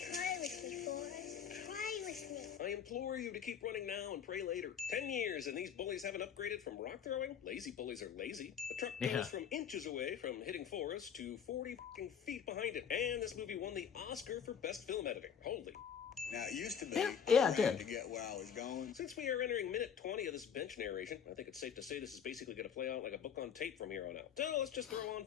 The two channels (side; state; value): right; quieter; 7.8 dB